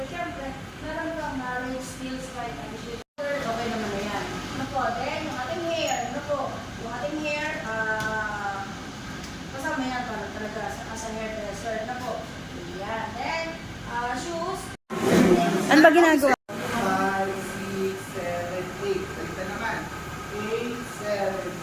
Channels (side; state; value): both; identical; correlation 1.00